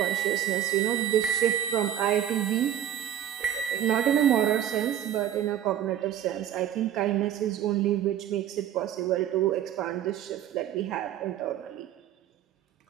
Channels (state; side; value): quieter; left; 10.8 dB